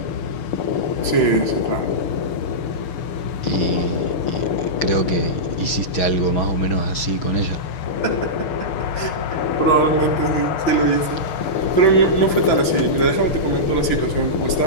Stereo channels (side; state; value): right; late; 6.1 ms